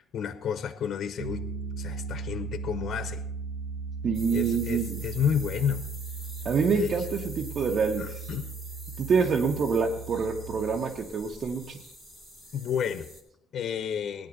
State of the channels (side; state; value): both; normal; correlation 0.61